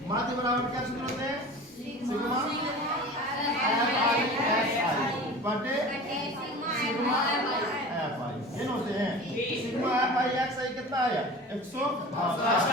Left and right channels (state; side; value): normal; both; correlation 0.37